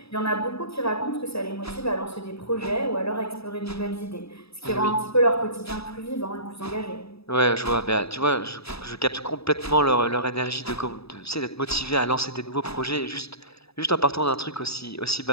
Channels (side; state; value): right; late; 0.78 ms